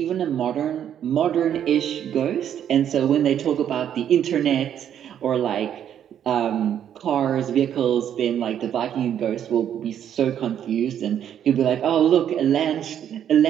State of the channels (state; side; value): quieter; left; 9.7 dB